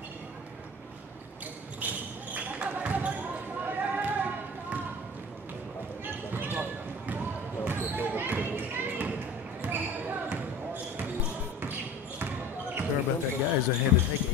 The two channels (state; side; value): normal; both; correlation 0.40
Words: Sorry about that, guys. I had to take a